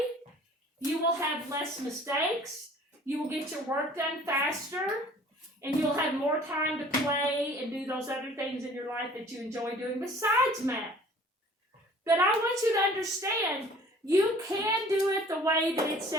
You will have less mistakes. You will get your work done faster. And you'll have more time to play and do those other things in your life that you enjoy doing besides math. But I want you to understand, you can do it the way that it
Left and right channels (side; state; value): both; normal; correlation 0.51